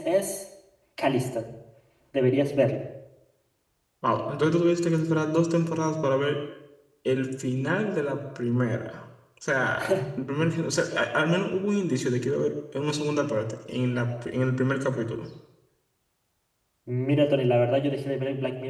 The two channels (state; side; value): identical; both; correlation 1.00